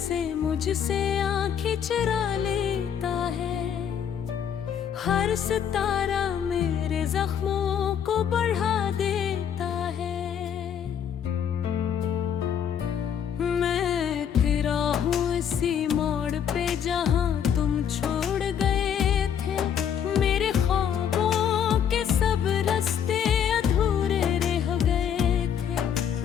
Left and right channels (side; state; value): right; quieter; 8.5 dB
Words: मुझसे आंखें चुरा लेता है, हर सितारा मेरे जख्मों को बढ़ा देता है। मैं तेरा हूँ इसी मोड़ पे जहाँ तुम छोड़ गए थे। मेरे ख्वाबों के सब रास्ते अधूरे रह गए